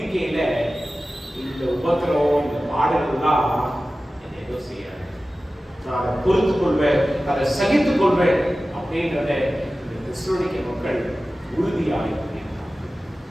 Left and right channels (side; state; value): both; normal; correlation 0.95